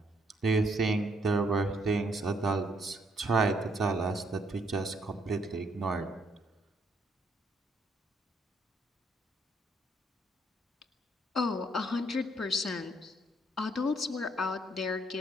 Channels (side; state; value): both; normal; correlation 0.70